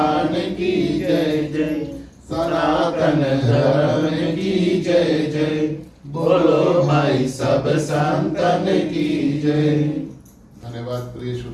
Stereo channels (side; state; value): both; identical; correlation 1.00